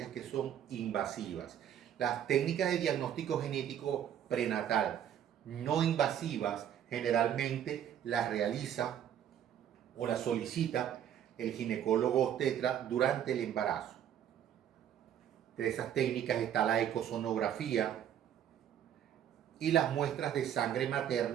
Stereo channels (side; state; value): left; quieter; 10.0 dB